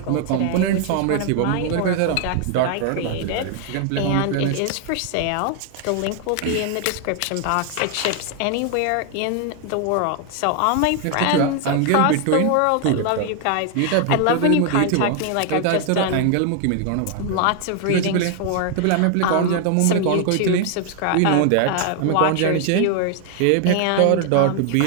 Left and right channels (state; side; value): different; both; correlation 0.00